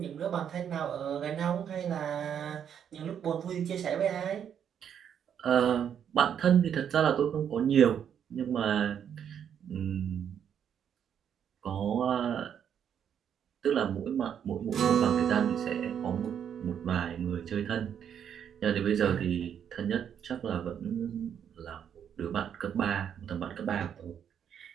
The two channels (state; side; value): quieter; left; 8.6 dB